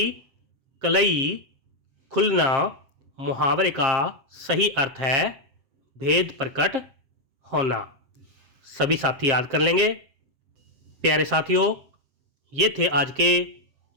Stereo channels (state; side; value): late; left; 7.5 ms